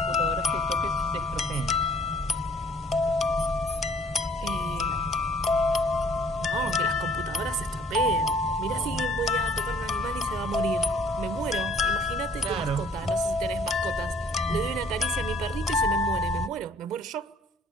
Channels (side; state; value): both; normal; correlation 0.58